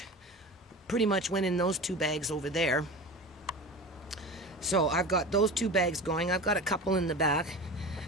pretty much went in those 2 bags over there. So I've got those 2 bags going. I've got a couple in the back.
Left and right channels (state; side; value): normal; both; correlation 0.31